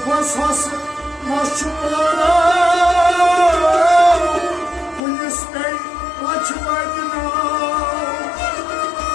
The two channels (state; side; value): drops out; right; at 5.0 s